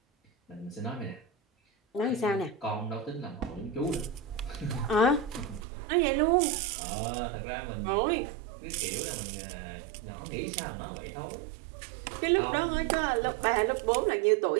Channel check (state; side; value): drops out; left; at 5.7 s